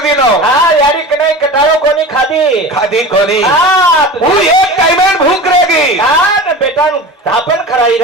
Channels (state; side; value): normal; both; correlation 0.33